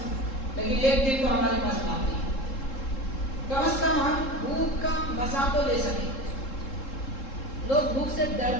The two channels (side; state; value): right; late; 3.7 ms